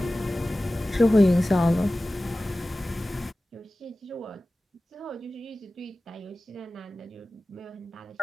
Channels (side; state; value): both; normal; correlation 0.96